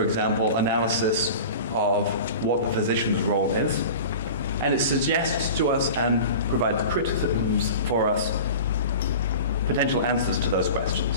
example, analysis of what the physician's role is. And it suggests to us and provides criticisms for us potential answers to those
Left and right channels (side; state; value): both; inverted; correlation -0.36